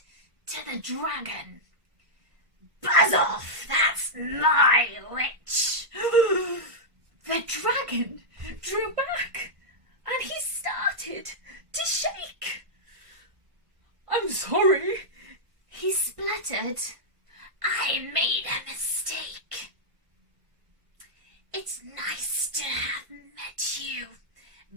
to the dragon, buzz off, that's my witch. The dragon drew back, and he started to shake. I'm sorry, he spluttered. I made a mistake. It's nice to have met you,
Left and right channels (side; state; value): left; late; 1.5 ms